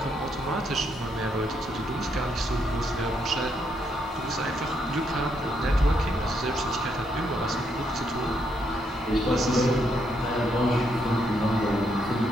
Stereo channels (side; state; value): both; normal; correlation 0.76